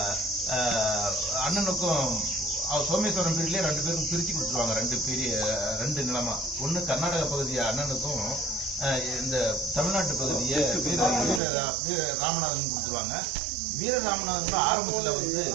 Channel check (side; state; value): left; drops out; at 11.4 s